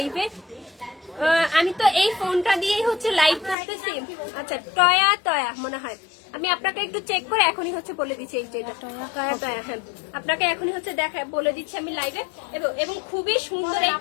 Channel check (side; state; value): right; drops out; at 3.6 s